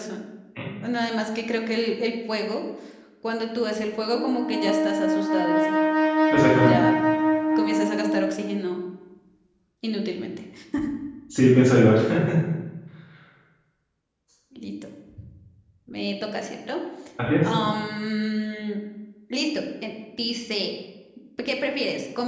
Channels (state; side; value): identical; both; correlation 1.00